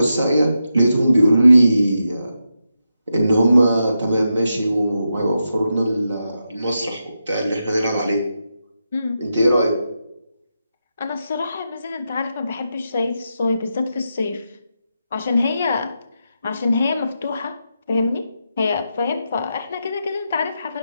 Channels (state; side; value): inverted; both; correlation -0.86